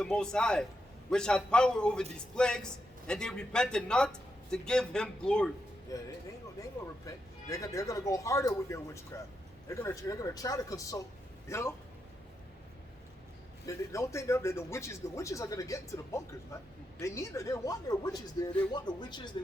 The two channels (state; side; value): normal; both; correlation 0.84